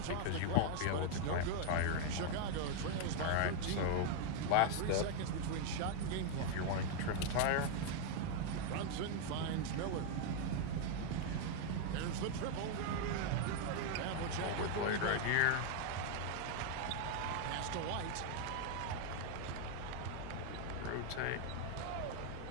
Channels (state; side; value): different; both; correlation 0.00